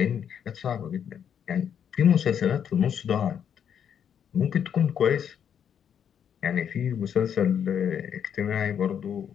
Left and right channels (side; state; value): right; quieter; 8.4 dB